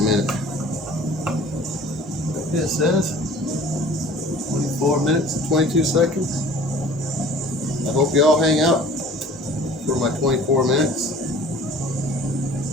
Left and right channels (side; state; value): both; normal; correlation 0.47